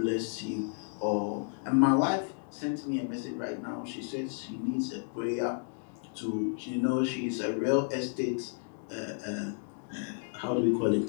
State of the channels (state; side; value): silent; right; 56 dB below the other